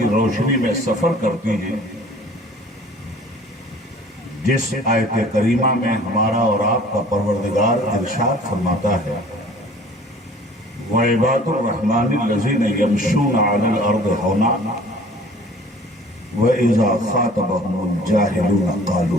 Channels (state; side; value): normal; both; correlation 0.49